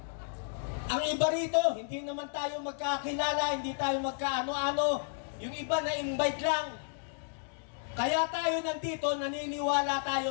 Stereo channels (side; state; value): right; silent; digital silence